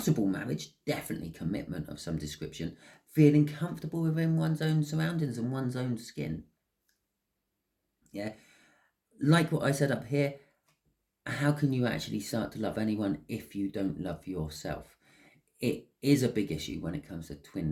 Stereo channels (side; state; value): both; identical; correlation 1.00